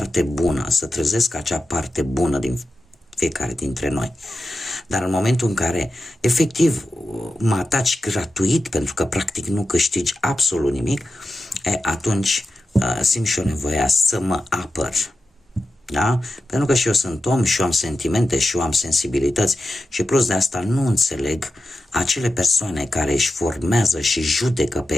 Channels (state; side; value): normal; both; correlation 0.91